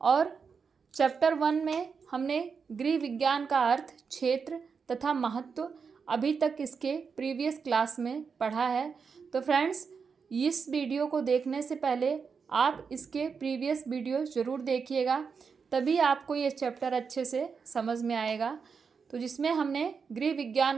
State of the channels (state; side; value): quieter; left; 5.7 dB